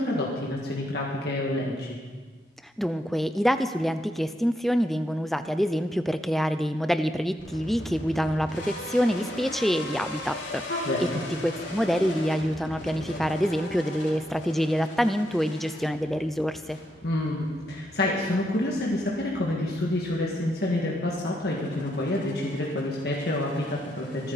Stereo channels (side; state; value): both; normal; correlation 0.80